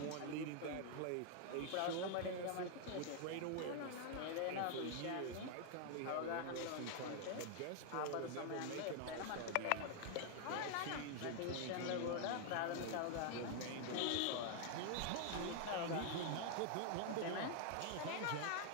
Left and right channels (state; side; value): different; both; correlation 0.00